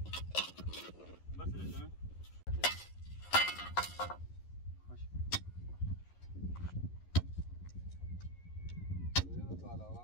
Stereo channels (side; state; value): right; late; 11 ms